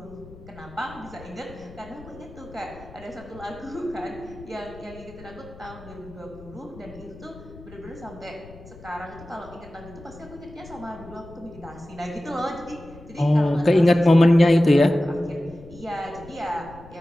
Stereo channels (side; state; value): left; noise; rumble, 19 dB below the sound